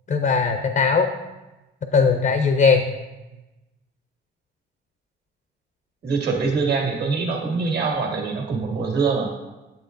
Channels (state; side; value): normal; both; correlation 0.37